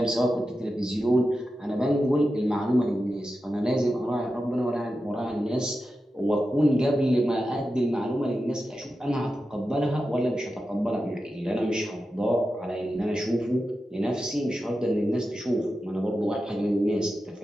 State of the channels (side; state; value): both; normal; correlation 0.91